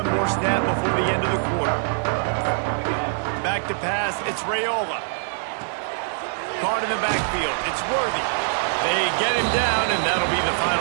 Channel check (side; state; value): left; silent; 62 dB below the other